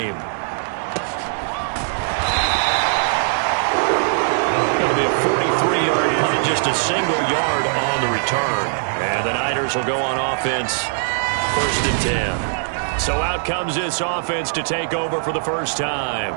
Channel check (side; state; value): left; silent; digital silence